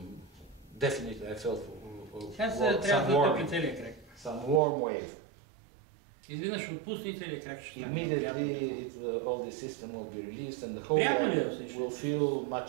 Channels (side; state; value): left; drops out; at 4.6 s